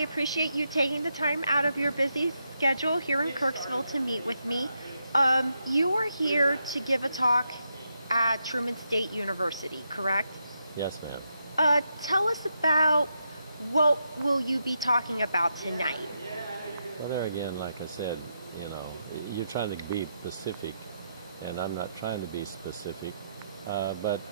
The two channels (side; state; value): both; inverted; correlation -0.82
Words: you taking the time out of your busy schedule here in Kirksville to meet with me. You are here to give a talk at Truman State University, correct? Yes, ma'am. Tell us about what will you be talking about tonight? Well, there again, like I said, you're trying to be specific, and I'm not trying to be specific. But